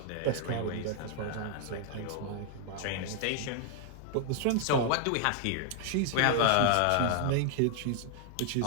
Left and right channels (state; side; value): different; both; correlation 0.00